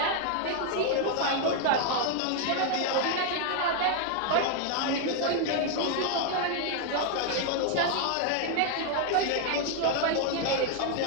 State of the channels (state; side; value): different; both; correlation 0.00